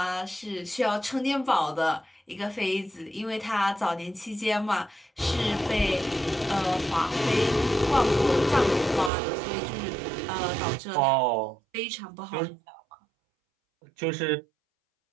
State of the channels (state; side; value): drops out; left; at 9.1 s